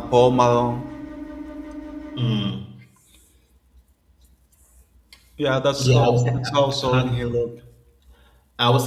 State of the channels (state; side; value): identical; both; correlation 1.00